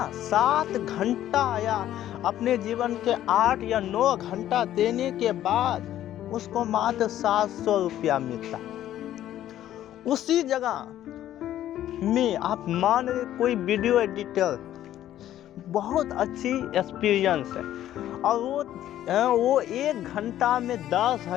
7 घंटा या अपने जीवन के 8 या 9 घंटा देने के बाद उसको मात्र 700 रुपया मिलता। उसी जगह में आप मान रहे कोई वीडियो एडिटर बहुत अच्छी एक्सपीरियंस है और वो 1 घंटा में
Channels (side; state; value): right; quieter; 12.4 dB